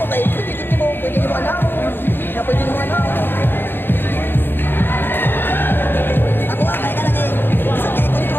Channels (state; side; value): late; right; 0.098 ms